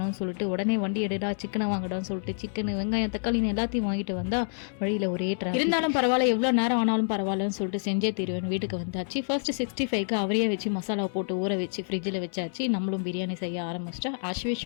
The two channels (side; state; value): right; silent; 59 dB below the other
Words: சொல்லிட்டு உடனே வண்டி எடுடா சிக்கனை வாங்கடான்னு சொல்லிட்டு சிக்கன் வெங்காயம் தக்காளின்னு எல்லாத்தையும் வாங்கிட்டு வந்தா வழியில் ஒரே ட்ராஃபிக். இருந்தாலும் பரவாயில்ல எவ்வளோ நேரம் ஆனாலும் பரவாயில்லன்னு சொல்லிட்டு செஞ்சே தீருவேன் வீட்டுக்கு வந்தாச்சு. ஃபர்ஸ்ட் 65க்கு அவரையே வச்சு மசாலா போட்டு ஊற வச்சு ஃப்ரிட்ஜில் வச்சாச்சு. நம்மளும் பிரியாணி செய்ய ஆரம்பிச்சிட்டா ஆஸ்